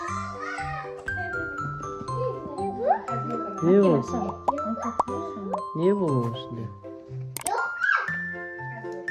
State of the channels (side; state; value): both; identical; correlation 1.00